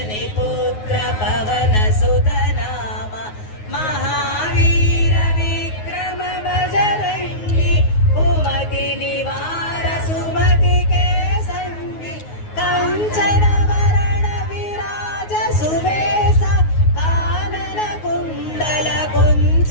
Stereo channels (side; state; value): right; late; 9.4 ms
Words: पुत्र पवन सुत नामा। महावीर विक्रम बजरंगी, कुमति निवार सुमति के संगी। कंचन वरण विराज सुबेसा, कानन कुंडल